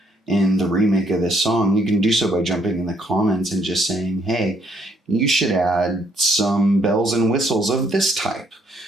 in the remake of this song, you can do so by jumping in the comments and just saying, hey, you should add some bells and whistles of this type.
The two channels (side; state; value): both; normal; correlation 0.69